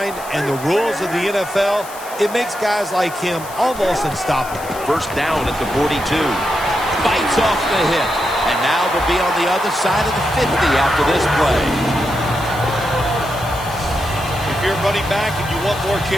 and the rules of the NFL, it makes guys like him almost unstoppable. First down at the 42. Bites off the hit. And now they'll be on the other side of the 50 after this play. If you're running back and you want more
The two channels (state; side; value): noise; left; hiss, 16 dB below the sound